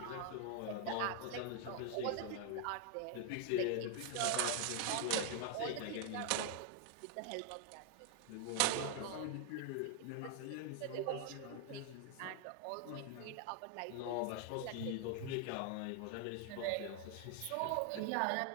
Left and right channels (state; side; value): different; both; correlation 0.00